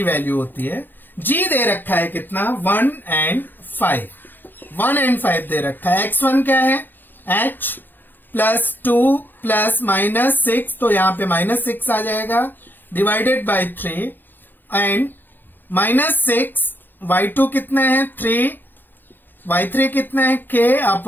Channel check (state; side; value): late; right; 0.092 ms